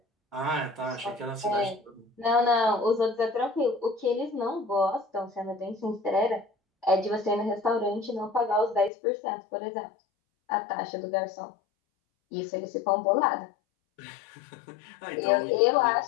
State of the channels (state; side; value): drops out; right; at 8.9 s